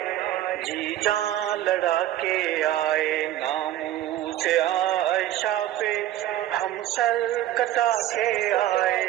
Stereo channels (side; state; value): left; quieter; 13.3 dB